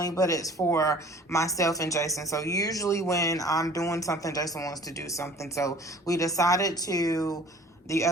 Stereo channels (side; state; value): both; normal; correlation 0.49